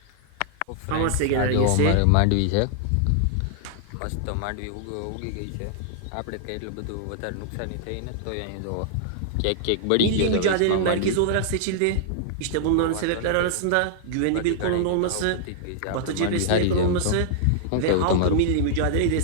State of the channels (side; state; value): both; different; correlation -0.01